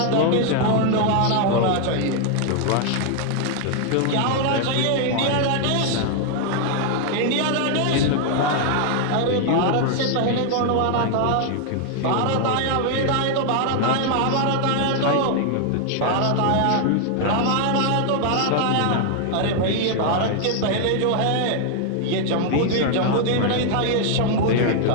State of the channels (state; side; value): different; both; correlation 0.00